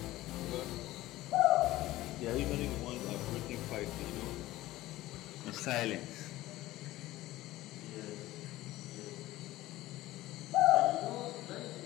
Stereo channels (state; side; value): quieter; right; 16.7 dB